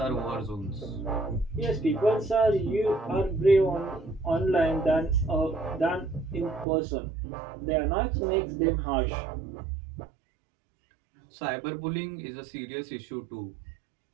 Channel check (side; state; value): left; drops out; at 6.7 s